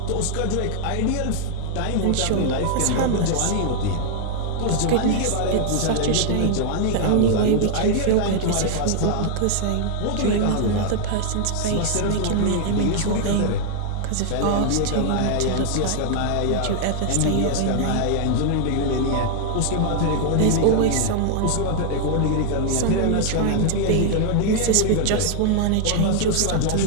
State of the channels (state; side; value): different; both; correlation -0.01